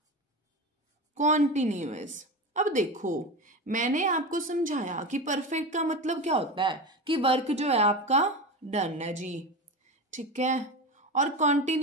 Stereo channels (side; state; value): both; normal; correlation 0.24